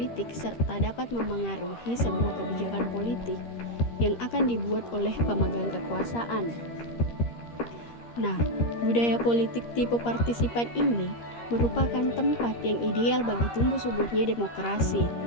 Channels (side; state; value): right; late; 13 ms